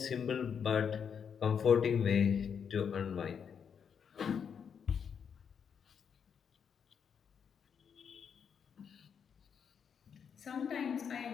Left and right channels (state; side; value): quieter; right; 7.1 dB